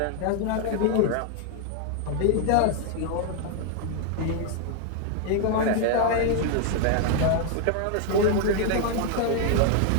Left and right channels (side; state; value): both; different; correlation 0.00